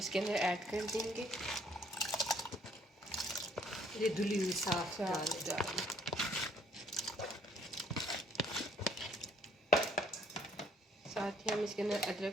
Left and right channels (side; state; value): both; normal; correlation 0.63